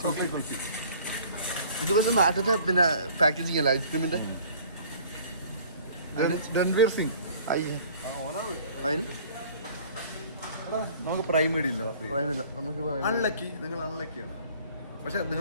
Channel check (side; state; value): both; inverted; correlation -0.51